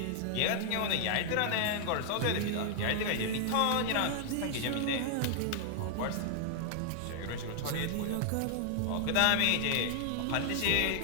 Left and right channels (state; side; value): different; both; correlation 0.00